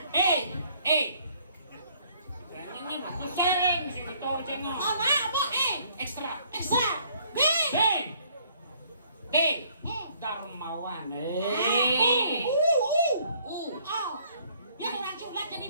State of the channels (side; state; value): both; inverted; correlation -0.62